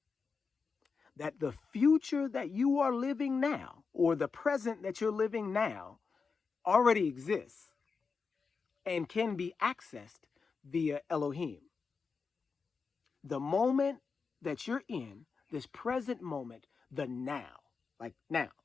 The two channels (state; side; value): quieter; right; 5.1 dB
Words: That the future that you are living now, or the present that you're living now, already exists and can be accessed via Elohim. The moment that you're in, this present moment, the now, like now,